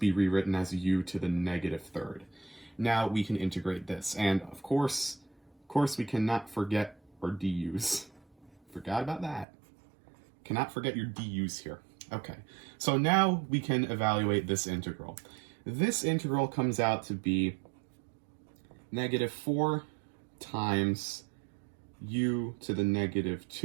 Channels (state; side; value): drops out; left; at 9.5 s